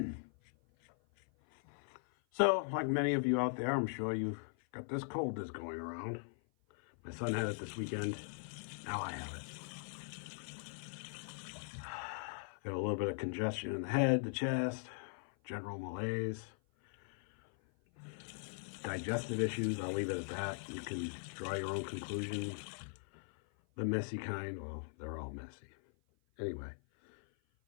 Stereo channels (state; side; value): silent; right; 51 dB below the other